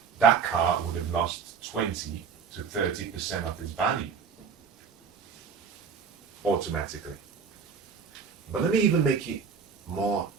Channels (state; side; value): quieter; left; 6.2 dB